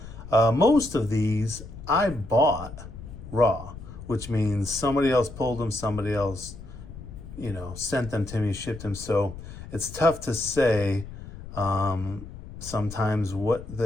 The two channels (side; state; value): left; noise; rumble, 13 dB below the sound